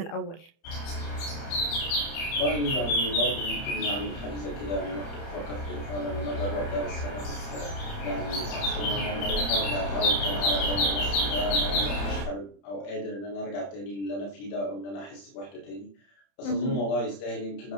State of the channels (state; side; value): late; right; 30 ms